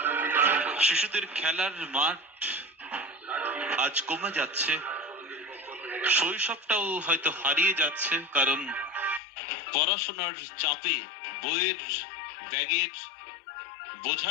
শিশুদের খেলার মাঠ আজ কমে যাচ্ছে, শৈশবটাও হয়তো হারিয়ে যাচ্ছে, কারণ পড়াশোনার চাপে বইয়ের ব্যাগের বোঝা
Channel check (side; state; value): right; drops out; at 9.2 s